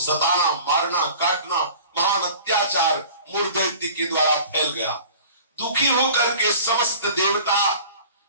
मारना, काटना, महान अत्याचार मुर दैत्य के द्वारा फैल गया। दुखी होकर के समस्त देवता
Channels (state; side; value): inverted; both; correlation -0.44